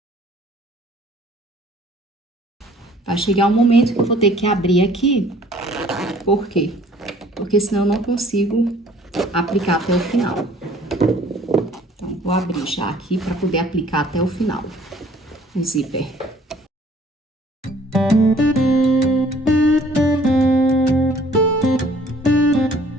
Vai chegar um momento que eu vou ter que abrir aqui, por quê? Porque senão eu não consigo aplicar até o final. Então, vou abrir já aqui para poder aplicar até o final o zíper.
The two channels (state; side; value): normal; both; correlation 0.56